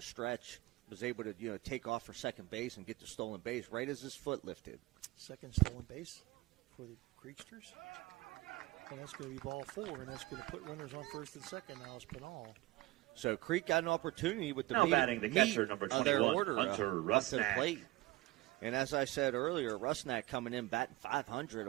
stretch was able to, take off for second base and get the stolen base right as his foot lifted. Second stolen base for the Creeksters. And that's going to be ball 4, and that's going to put runners on first and second now is Pinal. So Creek got an opportunity with the now batting the catcher, number 21, their order, Hunter Rusnak. To the plate. And as I said earlier, Rusnak coming in batting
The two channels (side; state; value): left; quieter; 18.6 dB